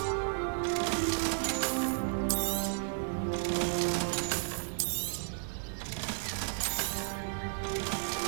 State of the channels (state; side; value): silent; left; digital silence